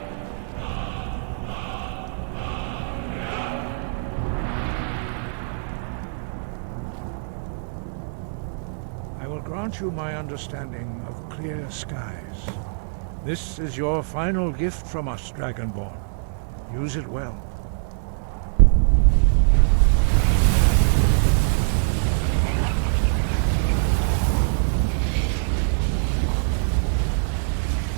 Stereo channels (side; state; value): left; silent; digital silence